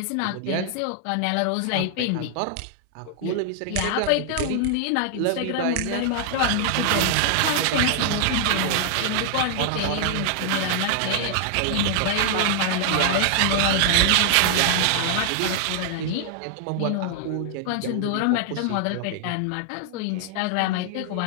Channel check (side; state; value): both; different; correlation 0.00